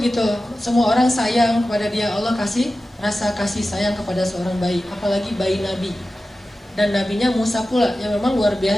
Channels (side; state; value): both; normal; correlation 0.94